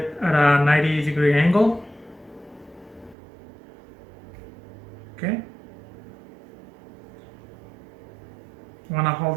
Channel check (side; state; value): left; drops out; at 3.2 s